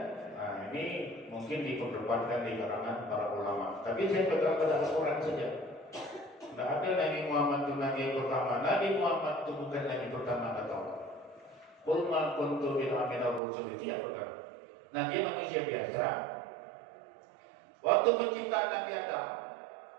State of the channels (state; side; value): drops out; left; at 13.4 s